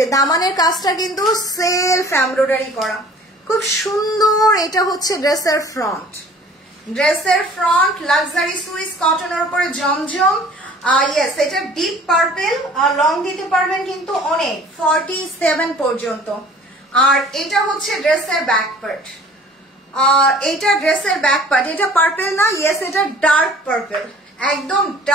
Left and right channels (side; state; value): both; normal; correlation 0.50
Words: দামানের কাজটা কিন্তু সেলফ এমব্রয়ডারি করা, খুব সুন্দর। এটা হচ্ছে ড্রেসের ফ্রন্ট, ড্রেসের ফ্রন্ট লাক্সারি সুইস কটনের উপরে জমজম। ইয়েস, এটা ডিপ পার্পেল, আর লং দিতে পারবেন কিন্তু অনেক 47 পর্যন্ত। আর এটা হচ্ছে ড্রেসের ব্যাক পার্ট, এটা ড্রেসের ব্যাক পার্ট, এটা পার্পেল না, ইয়েস এটা ডার্ক পার্পেল, একদম